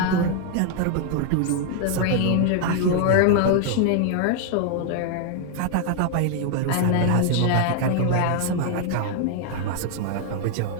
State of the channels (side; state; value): both; different; correlation 0.00